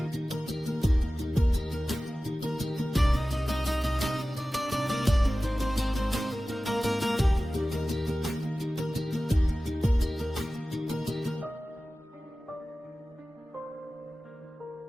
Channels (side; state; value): both; normal; correlation 0.96